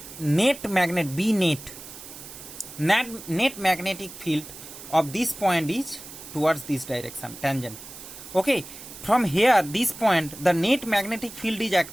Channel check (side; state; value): right; noise; hiss, 14 dB below the sound